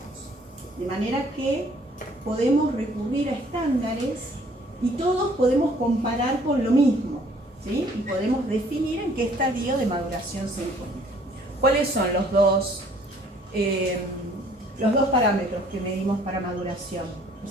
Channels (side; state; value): both; normal; correlation 0.59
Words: de manera que podemos recurrir a estándares y todos podemos comparar con lo mismo, ¿sí? Y podemos definir en qué estadio de maduración se encuentra. ¿Cuáles son los dos parámetros que medimos para maduración?